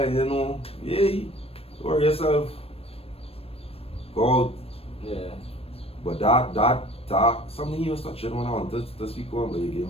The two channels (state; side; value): late; right; 0.28 ms